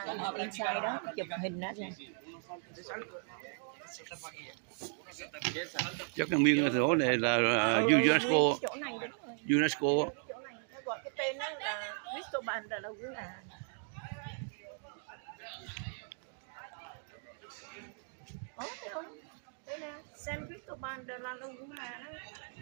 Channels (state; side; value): silent; left; 53 dB below the other